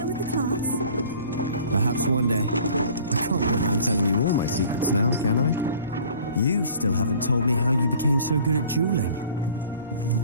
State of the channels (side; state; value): both; inverted; correlation -0.49